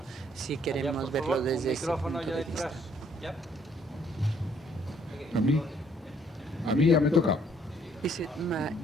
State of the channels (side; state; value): both; normal; correlation 0.65